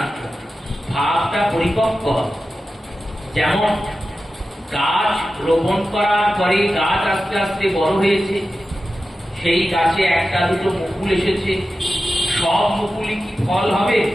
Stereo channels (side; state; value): both; normal; correlation 0.93